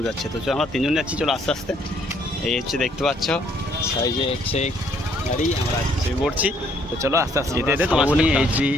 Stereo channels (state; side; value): normal; both; correlation 0.66